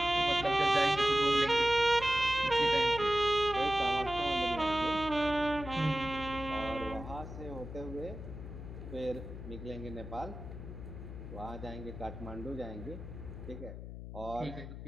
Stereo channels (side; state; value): left; noise; hum, 10 dB below the sound